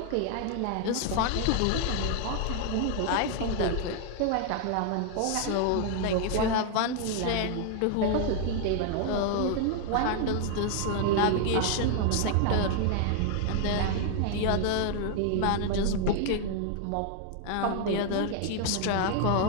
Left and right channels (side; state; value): both; different; correlation 0.00